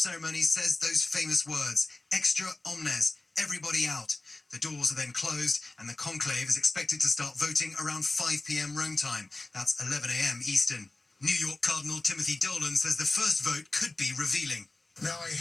says those famous words, extra omnes, everybody out. The doors are then closed, and the conclave is expected to start voting around 5 p.m. Rome time. That's 11 a.m. Eastern. New York Cardinal Timothy Dolan says the first vote could be revealing. Now, I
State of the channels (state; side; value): quieter; right; 3.0 dB